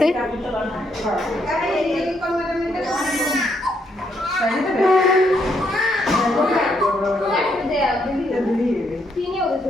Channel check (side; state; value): both; normal; correlation 0.74